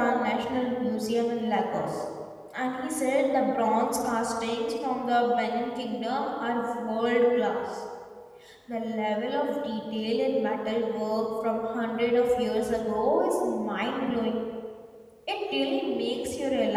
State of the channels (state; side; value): identical; both; correlation 1.00